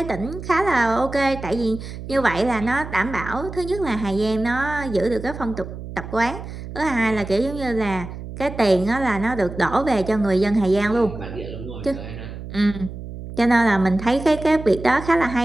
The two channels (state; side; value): noise; right; hum, 11 dB below the sound